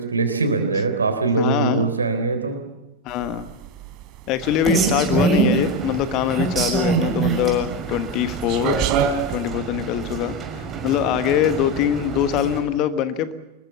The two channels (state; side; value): normal; both; correlation 0.09